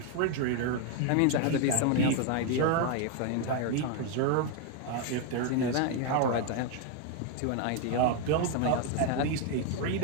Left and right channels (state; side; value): different; both; correlation 0.01